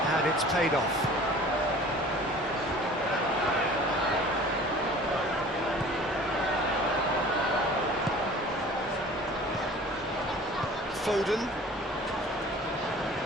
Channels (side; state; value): both; normal; correlation 0.45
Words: it's paid off. Foden.